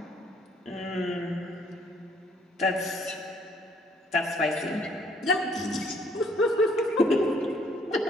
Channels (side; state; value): both; normal; correlation 0.64